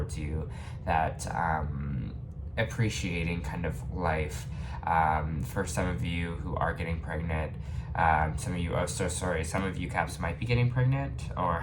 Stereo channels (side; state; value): both; identical; correlation 1.00